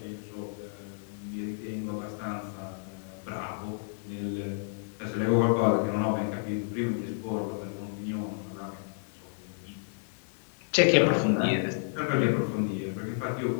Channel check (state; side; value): silent; right; digital silence